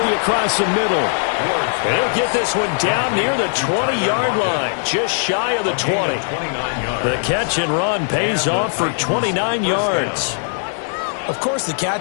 across the middle. They'll get this one down near the 20-yard line, just shy of the 20. The catch and run pays off for 29 yards. Of course, the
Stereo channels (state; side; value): silent; right; digital silence